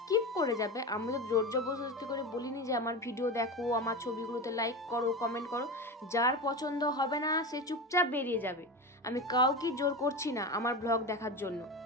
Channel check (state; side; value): normal; both; correlation 0.23